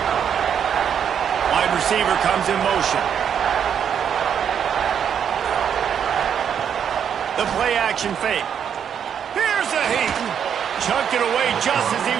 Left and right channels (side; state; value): left; quieter; 8.2 dB